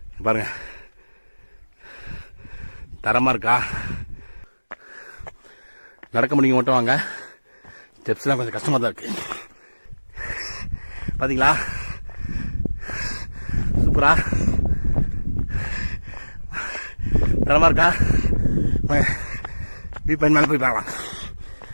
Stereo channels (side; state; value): both; inverted; correlation -1.00